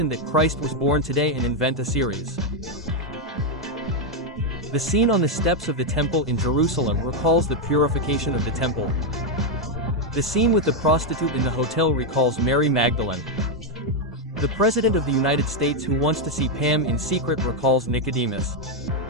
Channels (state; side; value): normal; both; correlation 0.03